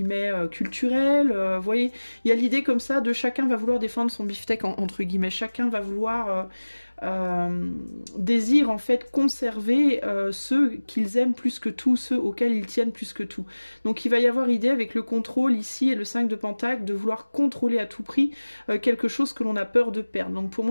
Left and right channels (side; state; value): both; inverted; correlation -1.00